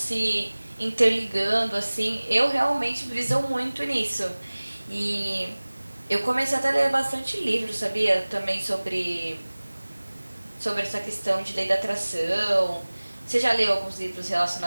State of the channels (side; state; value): both; inverted; correlation -1.00